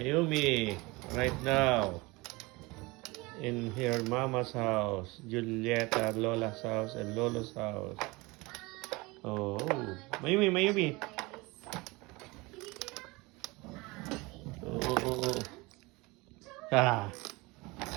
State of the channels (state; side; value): quieter; left; 23.9 dB